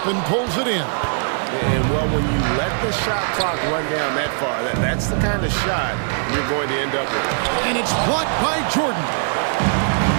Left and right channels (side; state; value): left; silent; 57 dB below the other